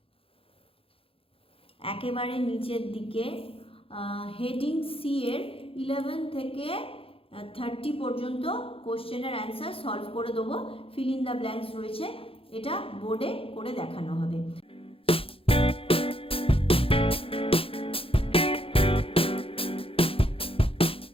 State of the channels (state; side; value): late; right; 0.27 ms